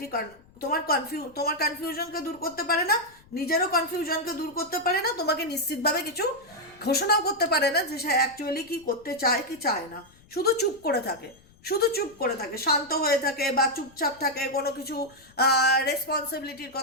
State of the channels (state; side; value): noise; left; rumble, 28 dB below the sound